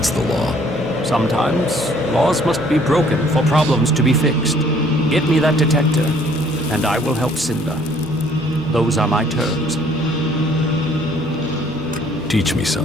the law? Sometimes, laws must be broken for problems to be fixed. Get me that detector, and I will help Cinda. Those are my terms. Teach me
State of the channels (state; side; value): normal; both; correlation 0.59